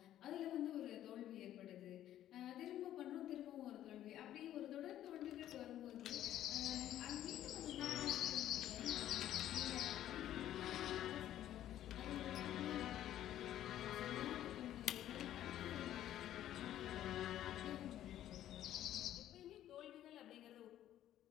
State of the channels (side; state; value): right; quieter; 12.2 dB